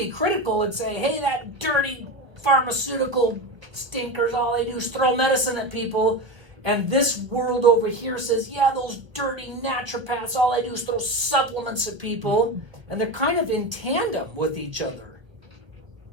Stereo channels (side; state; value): left; late; 1.2 ms